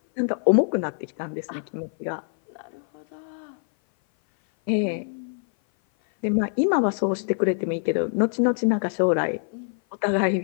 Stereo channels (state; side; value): silent; right; 57 dB below the other